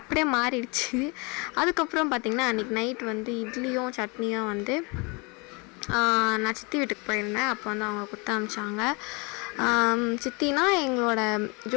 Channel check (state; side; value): quieter; right; 29.6 dB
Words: மாறிடுச்சு. அதுக்கப்புறம் பார்த்திங்கன்னா அன்றைக்கி நைட் வந்து இட்லியும் சட்னியும் வந்து நான் சித்தி வீட்டுக்கு போயிருந்தேன். அப்போ வந்து அவங்க கொடுத்து அனுப்பிச்சாங்க. சித்தினா எங்களோட